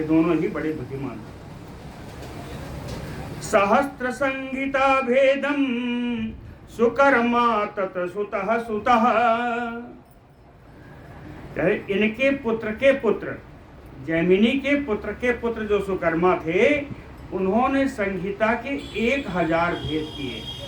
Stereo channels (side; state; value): both; identical; correlation 1.00